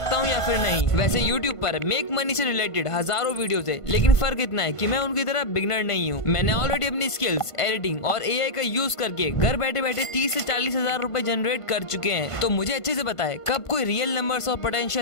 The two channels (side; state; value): right; late; 1.5 ms